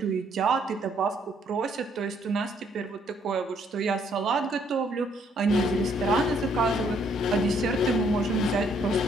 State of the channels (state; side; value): normal; both; correlation 0.67